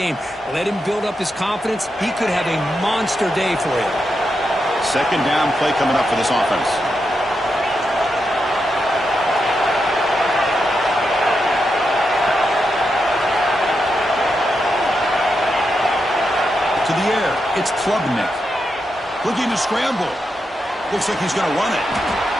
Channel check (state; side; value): normal; both; correlation 0.85